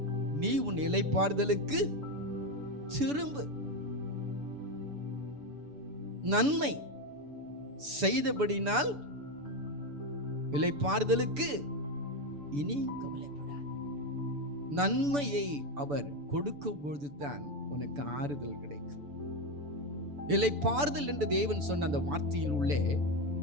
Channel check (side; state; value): left; late; 6.9 ms